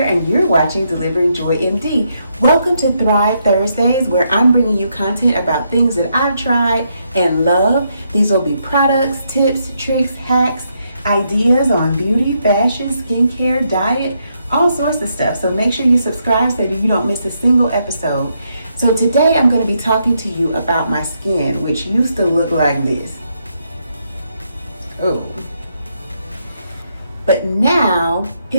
and you're watching Delivering Joy MD. Welcome to Thrive Thursdays, where I'm bringing you content about things that I've tried and love. These will be products, tips, tricks, hacks, ideas on beauty, fashion, skincare, diet, all sorts of stuff. So make sure you subscribe so that you don't miss a single episode. So today I'm going to be talking to you about my skin, which used to look like this. Oh. But now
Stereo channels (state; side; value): inverted; both; correlation -0.78